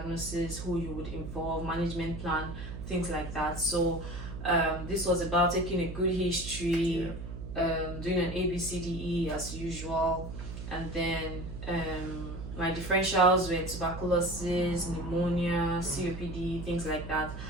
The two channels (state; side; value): noise; right; hum, 9 dB below the sound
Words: who you would involve, management plan, things like that. So this was about taking a good history, doing an ABCDE as usual, and then my differentials were tuberculosis, pneumonia, COPD, things like that.